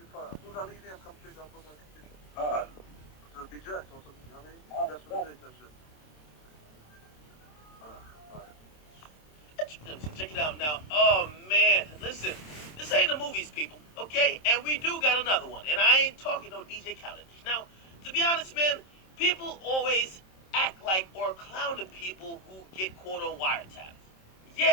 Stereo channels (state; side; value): late; right; 27 ms